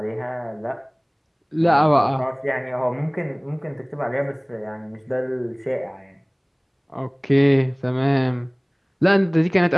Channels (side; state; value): both; identical; correlation 1.00